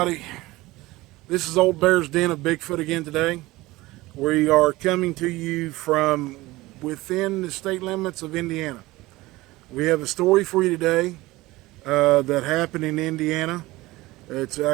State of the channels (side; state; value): left; quieter; 19.4 dB